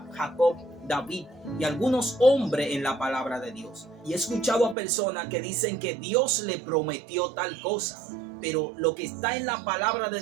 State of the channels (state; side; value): drops out; left; at 4.8 s